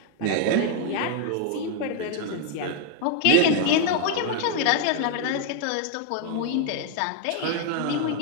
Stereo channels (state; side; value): different; both; correlation 0.00